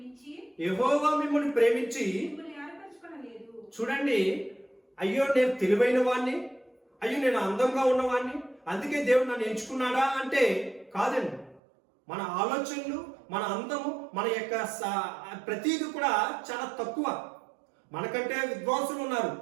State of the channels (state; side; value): drops out; left; at 11.6 s